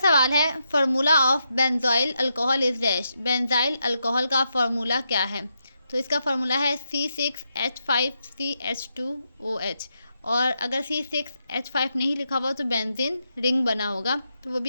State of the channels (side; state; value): both; inverted; correlation -0.83